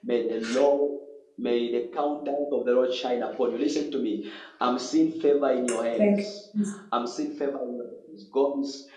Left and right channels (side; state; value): both; identical; correlation 1.00